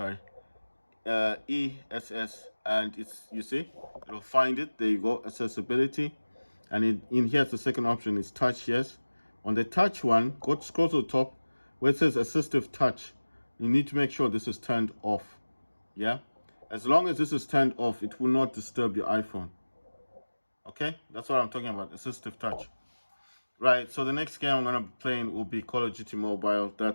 and you see, it'll find it. There you go, accessibility. And in here's the second option is touch. Yes, on the touch one, scroll to the top where it says assistive touch. you need to make sure this is turned off. Yeah, as long as this is turned off, it will not disturb your iPhone. Okay, that's what I'm talking about, assistive touch. Right, so the next game I'm gonna be playing will be Call of Duty Mobile.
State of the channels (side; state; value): both; inverted; correlation -1.00